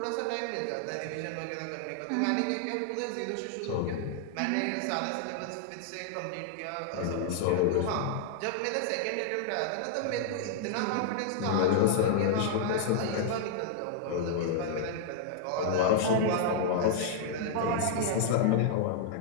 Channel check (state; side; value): different; both; correlation -0.01